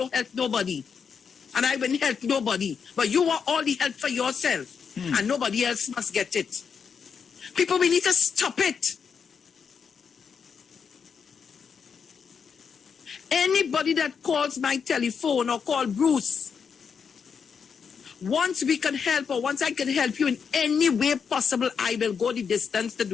help nobody. And I wouldn't help nobody. But you want all the help for yourself. And nobody else must get it. People, we need to stop it. Anybody that calls my telephone or call Bruce, once we can help or once I can help you in any way possible, I will go the distance to do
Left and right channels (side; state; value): right; quieter; 6.4 dB